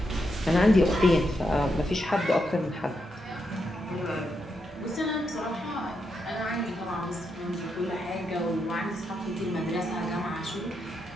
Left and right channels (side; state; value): both; normal; correlation 0.82